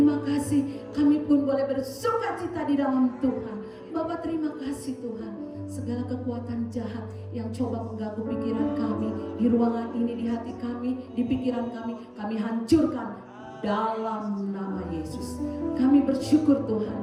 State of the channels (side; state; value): both; identical; correlation 1.00